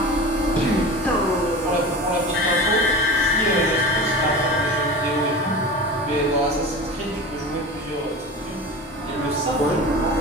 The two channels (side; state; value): both; normal; correlation 0.31